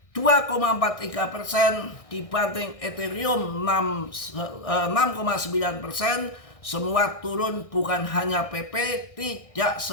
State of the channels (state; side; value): late; right; 1.6 ms